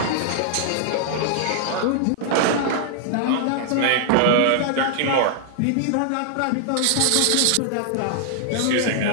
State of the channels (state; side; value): different; both; correlation -0.01